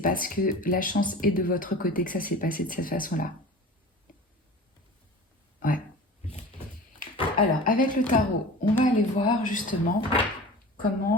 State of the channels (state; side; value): normal; both; correlation 0.37